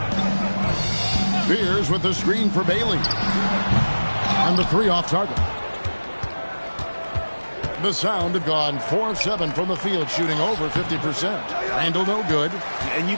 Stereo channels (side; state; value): both; inverted; correlation -1.00